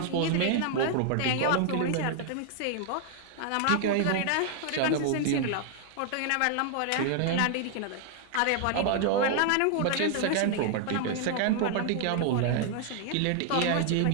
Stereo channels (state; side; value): different; both; correlation 0.00